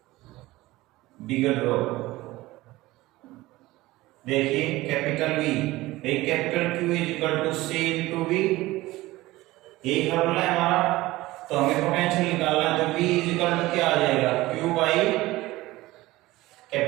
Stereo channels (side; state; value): left; quieter; 18.6 dB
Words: बिगर ड्रॉप। देखिए कैपिटल V एक capital Q is equal to C into V, यही फॉर्मूला है हमारा। तो हमें पोटेंशियल निकालना है, तो V इज इक्वल टू क्या आ जाएगा Q by